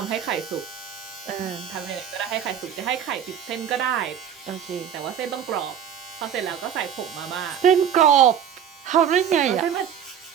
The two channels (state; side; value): quieter; left; 8.9 dB